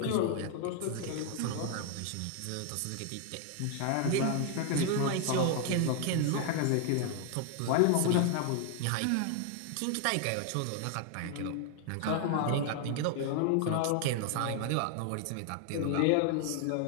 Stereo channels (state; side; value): different; both; correlation 0.00